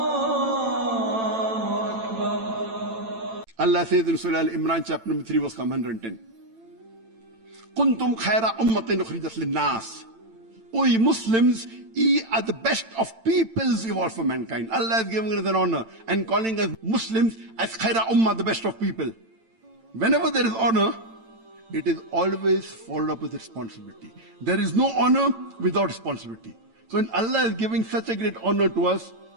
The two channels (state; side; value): late; left; 8.9 ms